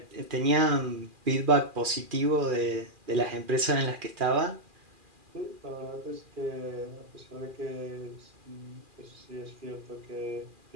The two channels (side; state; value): left; late; 2.4 ms